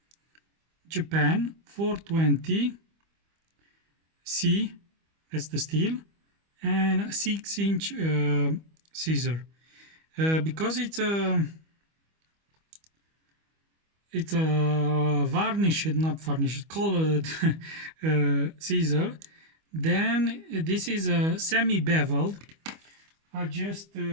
Japan 420 C, that's the steel, and a 6-inch scissor. Because it's a varnished, not varnished, colored scissor, then this is a semi-beveled. I just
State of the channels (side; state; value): left; late; 25 ms